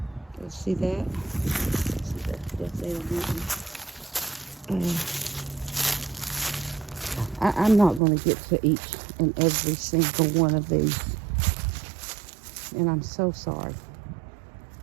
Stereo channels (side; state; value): left; drops out; at 8.0 s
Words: Go see that? See that death date on that one. I'm not going to get to each and every single one of these, and I'm so sorry.